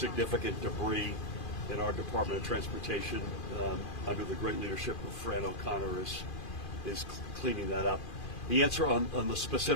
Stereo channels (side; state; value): right; late; 2.4 ms